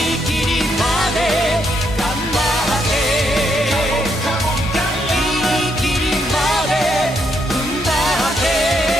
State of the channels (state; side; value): normal; both; correlation 0.77